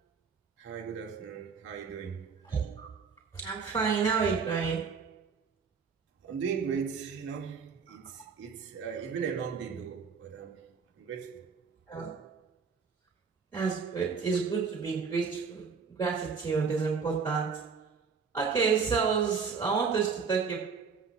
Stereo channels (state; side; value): quieter; left; 5.6 dB